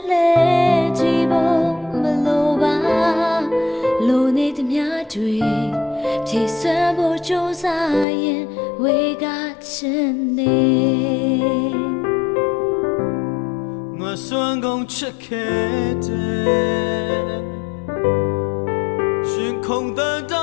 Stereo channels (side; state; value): right; drops out; at 8.1 s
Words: လဲကြည့်ဖို့မလိုပါလိုနေသမျှတွေဖြည့်စွမ်းဖို့ကြိုးစားရင်ဝေကချင်နေငါစွမ်းကုန်ချစ်ခဲ့တယ်ရှင်ခုန်တဲ့တိ